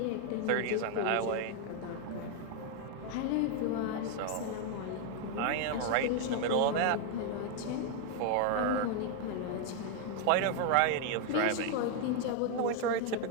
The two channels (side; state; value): both; different; correlation 0.00